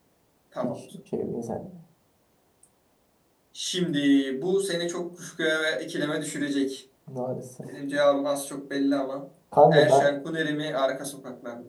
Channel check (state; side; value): identical; both; correlation 1.00